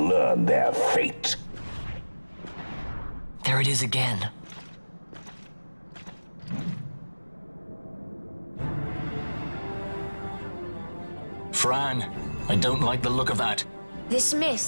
their fate. There it is again. Fran, I don't like the look of that. This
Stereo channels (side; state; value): both; inverted; correlation -1.00